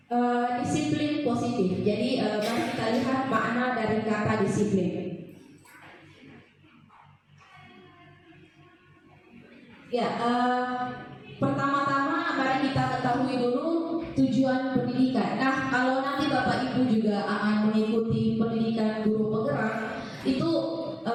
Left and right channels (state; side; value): identical; both; correlation 1.00